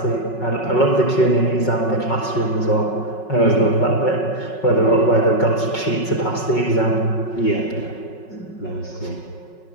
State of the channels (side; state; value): right; late; 5.4 ms